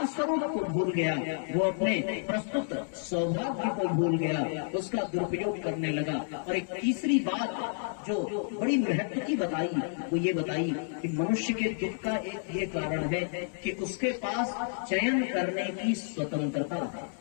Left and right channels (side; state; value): right; silent; digital silence